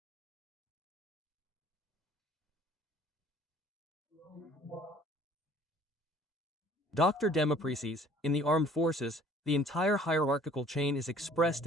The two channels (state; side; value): normal; both; correlation 0.54